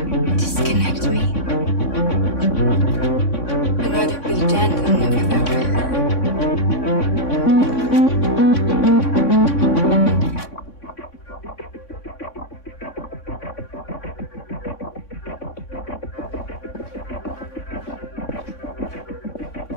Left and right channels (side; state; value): right; late; 3.6 ms